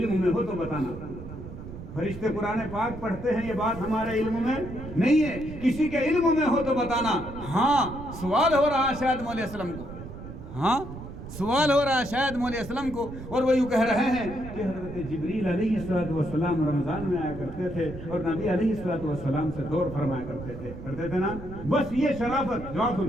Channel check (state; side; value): noise; right; rumble, 12 dB below the sound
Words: में हो तो बताना। फरिश्ते कुरान पाक पढ़ते हैं, ये बात हमारे इल्म में नहीं है, किसी के इल्म में हो तो बताना। हाँ, सवाल हो रहा है शायद मौलवी असलम को, हाँ सवाल हो रहा है शायद मौलवी असलम को, और वो यूँ कह रहे हैं कि हज़रत जिब्रील अलैहिस्सलाम रमज़ान में आया करते थे और नबी अलैहिस्सलाम से दौर फरमाया करते थे ना। बस ये शराफत, जवाब